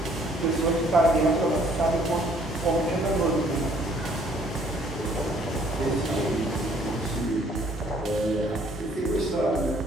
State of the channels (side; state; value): both; normal; correlation 0.61